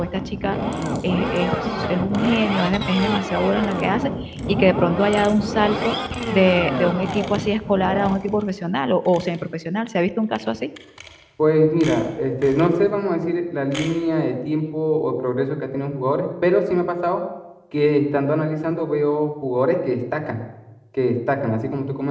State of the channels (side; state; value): both; identical; correlation 1.00